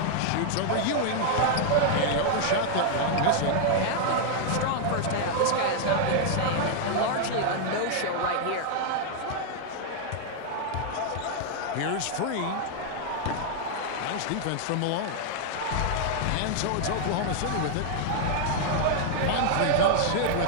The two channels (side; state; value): both; different; correlation 0.00